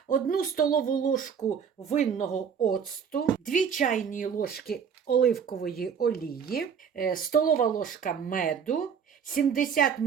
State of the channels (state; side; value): quieter; left; 7.1 dB